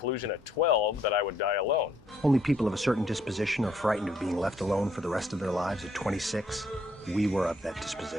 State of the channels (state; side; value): normal; both; correlation 0.68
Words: at 12 that I would die alone. Only people of a certain disposition are frightened of being left alone for the rest of their lives. At 26, we were of that